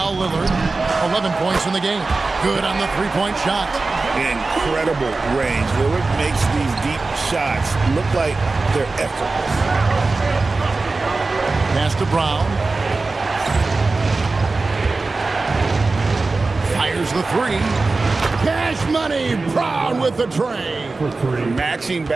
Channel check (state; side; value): quieter; left; 3.6 dB